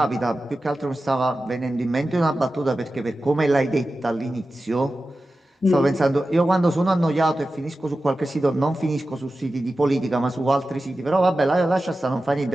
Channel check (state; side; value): normal; both; correlation 0.94